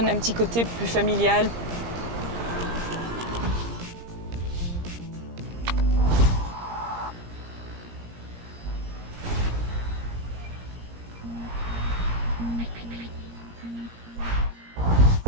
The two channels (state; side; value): late; left; 17 ms